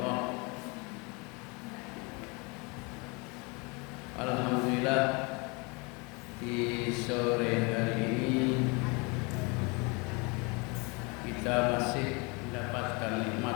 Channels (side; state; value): right; quieter; 29.5 dB